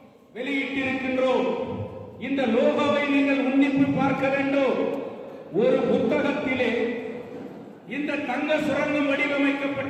வெளியிட்டிருக்கின்றோம். இந்த லோகோவை நீங்கள் உன்னிப்பு பார்க்க வேண்டும். ஒரு புத்தகத்திலே இந்த தங்க சுரங்கம்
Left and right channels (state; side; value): identical; both; correlation 1.00